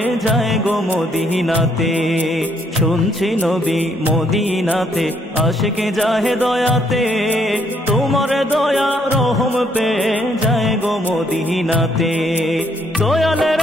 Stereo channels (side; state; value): both; normal; correlation 0.70